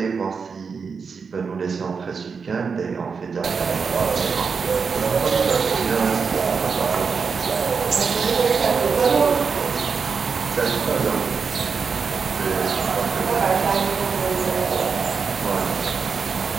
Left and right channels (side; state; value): left; quieter; 5.5 dB